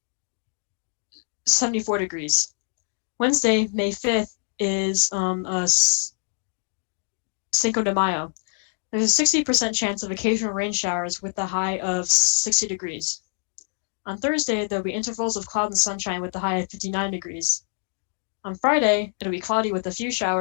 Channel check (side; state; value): right; silent; 62 dB below the other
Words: 74 degrees. Wednesday, May 5th, is Cinco de Mayo. There's a 60% chance of occasional rain showers with the high of 60 degrees. On Thursday, there'll be intervals of cloud and sunshine with the high of 59 degrees. On Friday, it'll be cloudy with a few